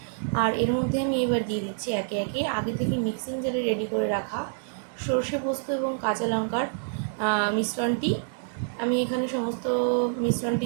আর এর মধ্যে আমি এবার দিয়ে দিচ্ছি একে একে আগে থেকে মিক্সিং জারে রেডি করে রাখা সর্ষে, পোস্ত এবং কাঁচা লঙ্কার মিশ্রণটি। আমি এখানে সমস্ত মিশ্রণটি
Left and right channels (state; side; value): silent; left; digital silence